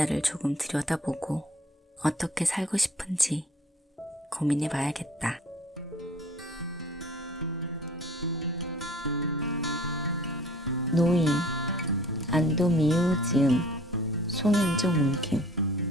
조금 들여다보고 어떻게 살고 싶은지 고민해 봐야겠다. 노인 안도미우지음 송현종 옮김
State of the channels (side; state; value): both; normal; correlation 0.50